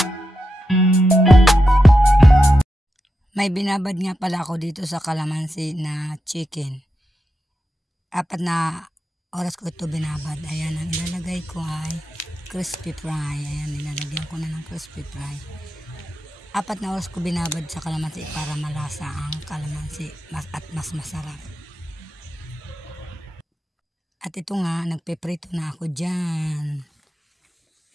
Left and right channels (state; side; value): normal; both; correlation 0.88